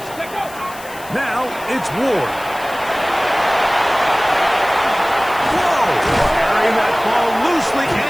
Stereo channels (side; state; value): left; noise; hiss, 18 dB below the sound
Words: Now it's Ward. Whoa! Carrying that ball loosely,